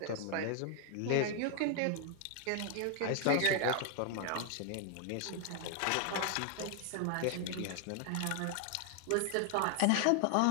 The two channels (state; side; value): different; both; correlation 0.00